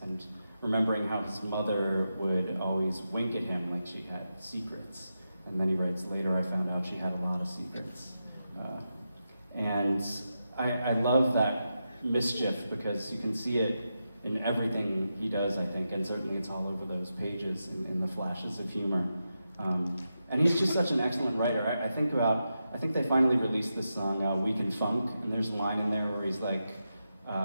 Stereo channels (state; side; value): inverted; both; correlation -0.88